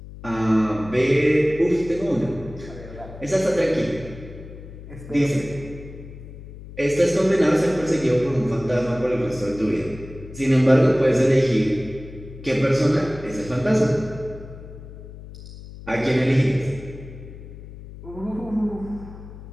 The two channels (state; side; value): noise; left; hum, 15 dB below the sound